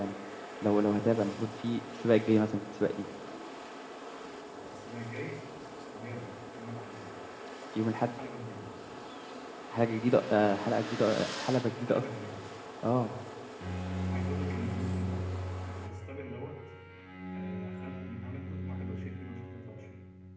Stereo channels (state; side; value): identical; both; correlation 1.00